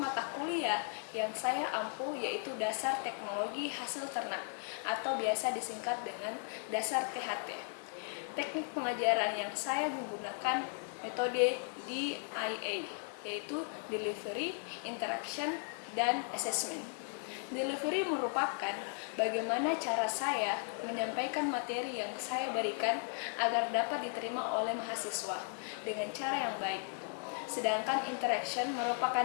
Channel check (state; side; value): silent; right; 53 dB below the other